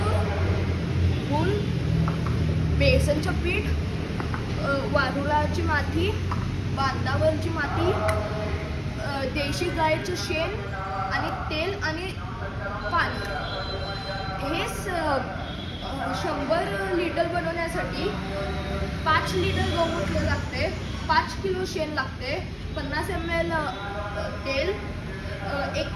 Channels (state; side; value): identical; both; correlation 1.00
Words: गूळ, बेसनचं पीठ, वारुळाची माती, बांधावरची माती, देशी गायचं शेण आणि तेल आणि पाणी. हे 100 लिटर बनवण्यासाठी 5 लिटर गौमूत्र लागते, 5 किलो शेण लागते, 50 ml तेल,